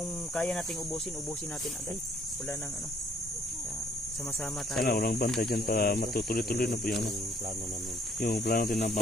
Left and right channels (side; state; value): both; normal; correlation 0.63